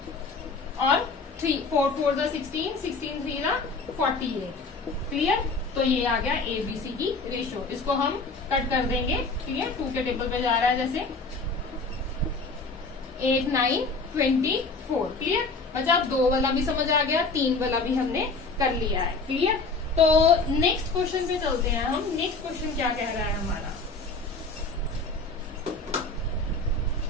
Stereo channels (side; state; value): right; quieter; 3.8 dB